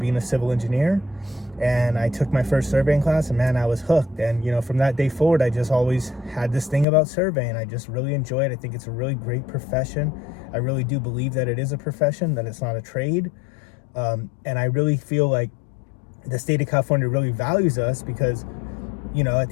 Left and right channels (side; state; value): right; drops out; at 6.9 s